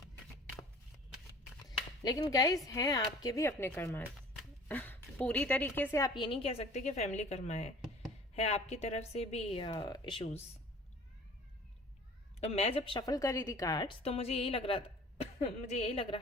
लेकिन गाइस हैं आपके भी अपने कर्मा। पूरी तरीके से आप ये नहीं कह सकते कि फैमिली कर्मा है आपकी तरफ से भी इश्यूज। तो मैं जब शफल कर रही थी कार्ड्स तो मुझे यही लग रहा था मुझे यही लग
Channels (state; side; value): normal; both; correlation 0.48